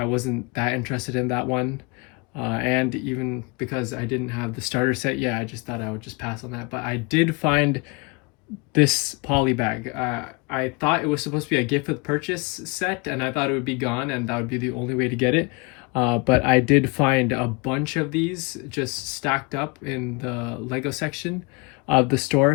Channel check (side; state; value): right; quieter; 29.4 dB